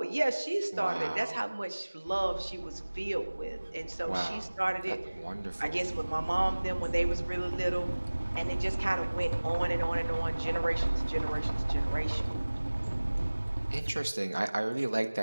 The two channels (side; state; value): both; inverted; correlation -1.00